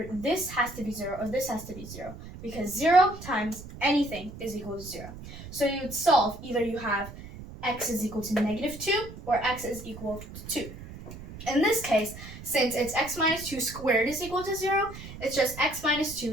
this has to be 0 or this has to be 0, because 0 times anything is equal to 0. So you would solve, either you have x is equal to negative 2 or x is equal to 2. In this case, since it's x minus 2 squared is equal to 0, it's just x minus 2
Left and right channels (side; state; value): right; noise; rumble, 14 dB below the sound